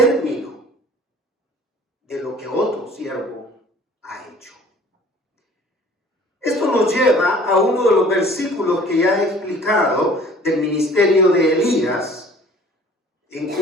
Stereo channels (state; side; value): normal; both; correlation 0.50